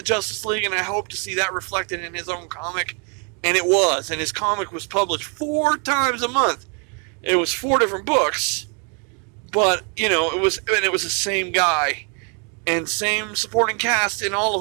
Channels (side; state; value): left; quieter; 38.1 dB